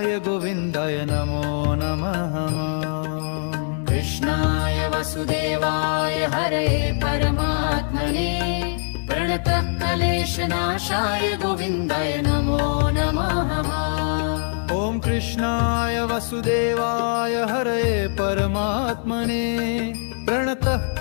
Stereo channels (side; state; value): right; silent; digital silence